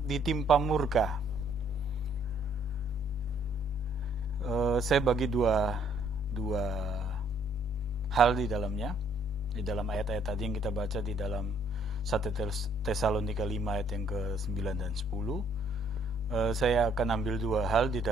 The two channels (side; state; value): both; normal; correlation 0.65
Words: ditimpa murka. Saya bagi dua hal di dalamnya. Di dalam ayat-ayat tadi yang kita baca di dalam 1 Tesalonika 5 ayat yang ke-9 dan 10, saya akan ambil dua hal di